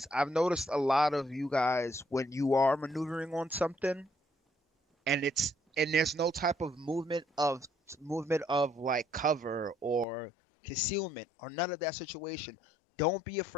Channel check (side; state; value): right; drops out; at 10.1 s